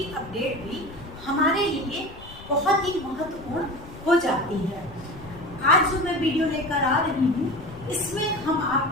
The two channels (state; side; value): noise; left; rumble, 17 dB below the sound